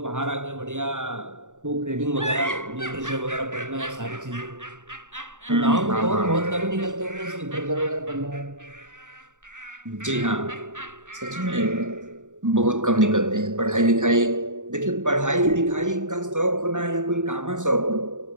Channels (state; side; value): late; left; 0.86 ms